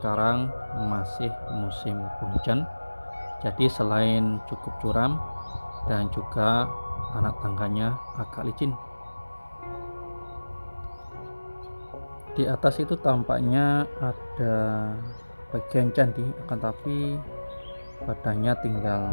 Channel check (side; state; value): both; inverted; correlation -1.00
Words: masih musim penghujan. Jadi selain cukup curam dan juga anak tangganya agak licin. Di atas itu tampaknya ada bagian candi, akan tapi badannya